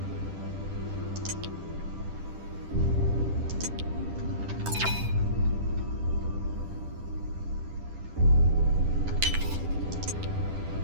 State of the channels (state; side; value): late; left; 10 ms